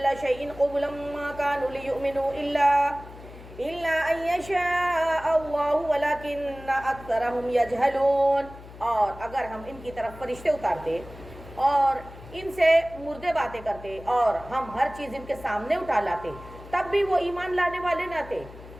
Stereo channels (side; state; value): left; noise; hum, 17 dB below the sound